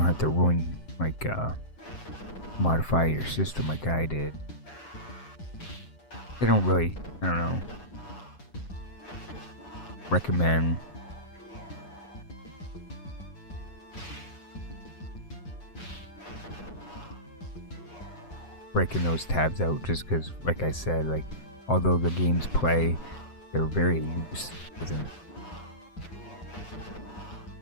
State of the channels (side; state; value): right; late; 7.7 ms